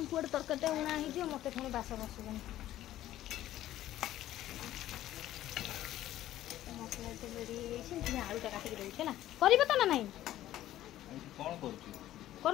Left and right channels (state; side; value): quieter; right; 13.6 dB